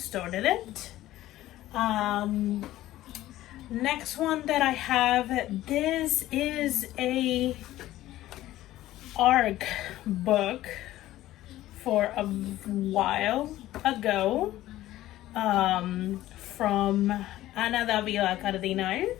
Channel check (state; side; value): quieter; right; 15.0 dB